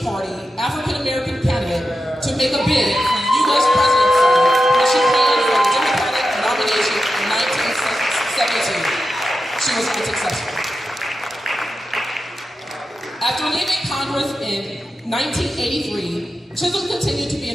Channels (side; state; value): both; normal; correlation 0.91